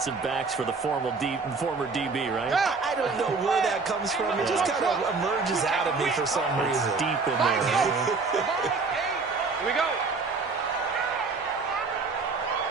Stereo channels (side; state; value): left; quieter; 4.4 dB